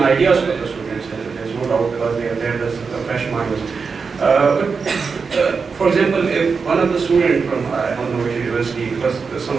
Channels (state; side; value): quieter; left; 5.2 dB